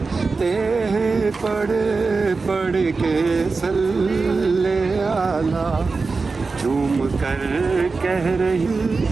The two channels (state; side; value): quieter; left; 4.2 dB